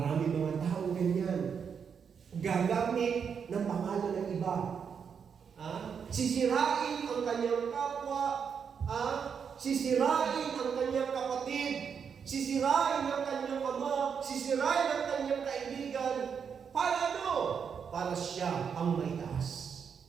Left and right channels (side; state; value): left; quieter; 6.8 dB